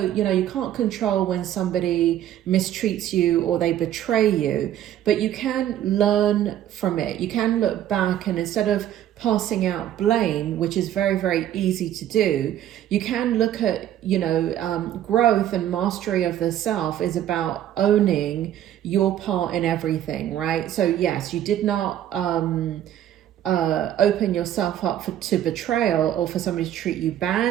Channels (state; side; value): quieter; left; 11.5 dB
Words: you know, you can't control when somebody mistreats you or they betray you, but you can learn from it. You can look back, and instead of passing out blame, which is very, very easy to do, you can look at, you know, growth and mastery of the self is about owning your part in everything, right? So yes, you did not open yourself up to betrayal, or for somebody to treat you